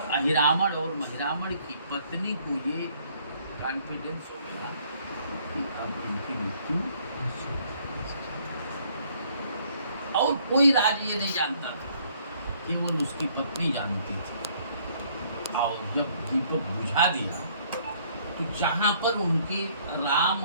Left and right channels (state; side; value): inverted; both; correlation -0.63